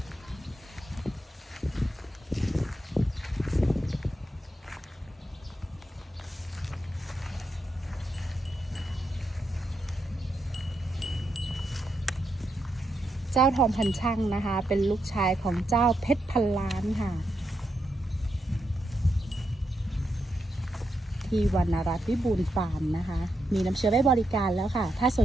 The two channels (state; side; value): normal; both; correlation 0.83